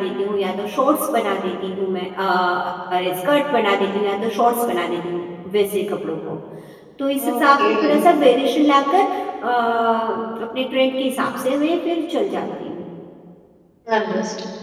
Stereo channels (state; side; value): identical; both; correlation 1.00